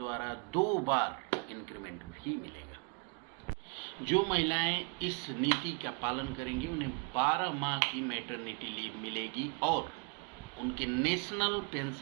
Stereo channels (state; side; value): quieter; left; 35.2 dB